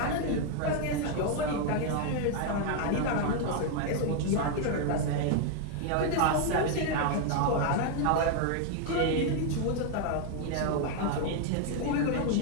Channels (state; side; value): different; both; correlation 0.00